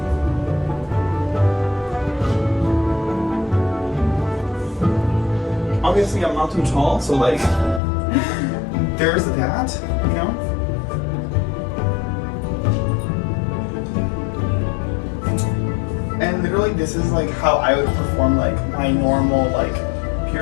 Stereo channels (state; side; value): drops out; right; at 7.8 s